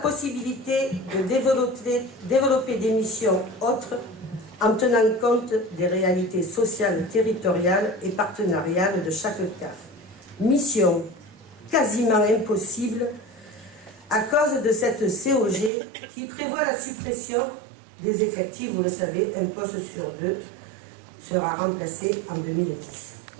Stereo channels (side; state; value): left; drops out; at 15.7 s